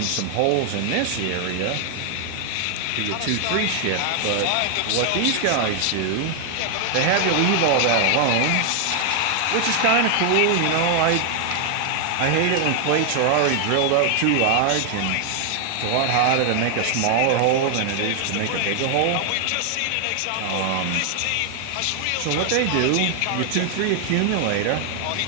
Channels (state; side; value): different; both; correlation 0.00